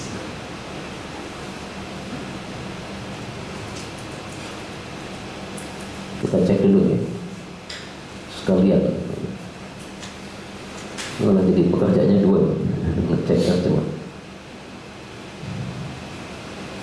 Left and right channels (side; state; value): both; identical; correlation 1.00